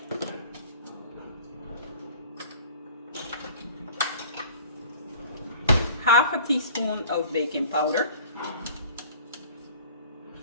half a teaspoon of baking powder.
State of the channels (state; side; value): inverted; both; correlation -0.46